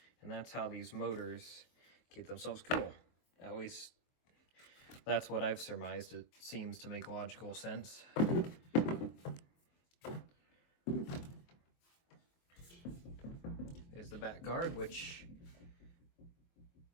And that's how these motors keep themselves cool. At least, that's what I've surmised. It seems to make logical sense. There's the back guard, which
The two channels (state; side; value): late; right; 23 ms